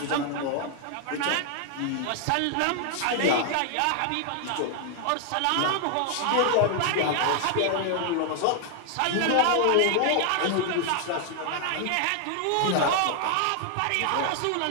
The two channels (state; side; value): different; both; correlation 0.00